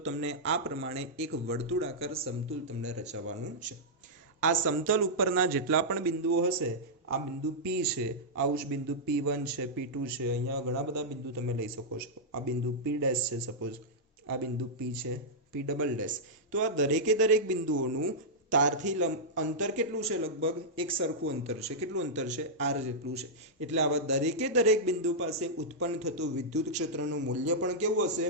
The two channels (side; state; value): both; normal; correlation -0.10